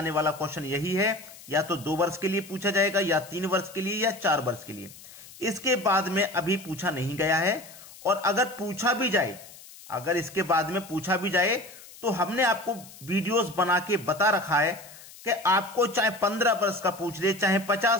वाला क्वेश्चन यही है, या तो 2 वर्ष के लिए पूछा जाएगा, या 3 वर्ष के लिए, या 4 वर्ष के लिए। इसके बाद में अभी पूछा नहीं गया है। और अगर पूछा भी जाए, अगर इसके बाद में पूछा भी जाए तो हमने आपको वीडियोस बना के बता रखा है कि आपको चाहे 15 वर्ष का पूछ ले, चाहे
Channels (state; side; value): noise; left; hiss, 19 dB below the sound